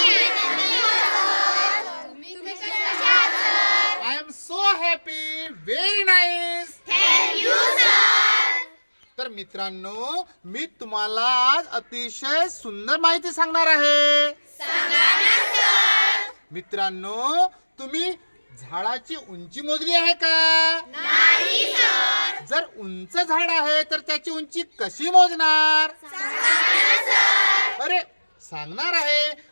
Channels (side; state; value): both; inverted; correlation -1.00